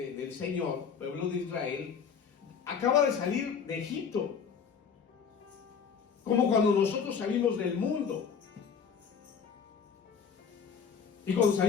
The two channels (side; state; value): right; quieter; 6.6 dB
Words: Señor, pueblo de Israel, acaba de salir de Egipto, como cuando nosotros salimos del mundo. Y cuando